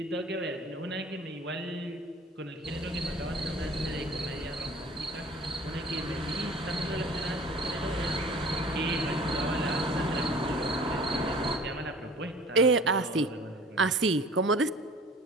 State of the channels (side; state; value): both; normal; correlation 0.47